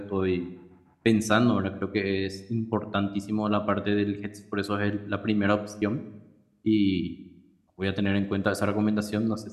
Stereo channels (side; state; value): both; identical; correlation 1.00